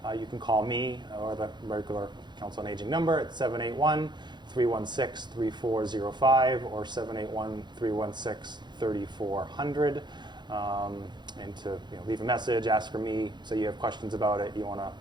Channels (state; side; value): late; left; 0.21 ms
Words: you can call me or the regular Council on Aging number at 781-316-3405 or 781-316-3400. And to leave a message, ask for me, say you have questions about it, you want to